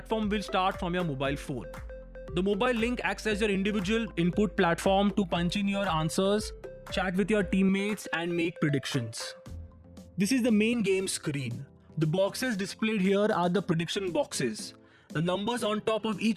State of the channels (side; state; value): both; identical; correlation 1.00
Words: will start from your mobile phone. The mobile link acts as your individual input platform to punch in your answers, chat with your teammates and make predictions. This is the main game screen. The boxes displayed here are the prediction boxes. The numbers on top of